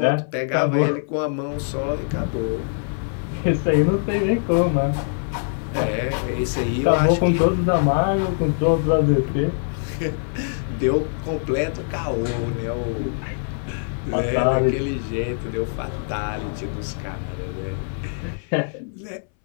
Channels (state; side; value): silent; right; 61 dB below the other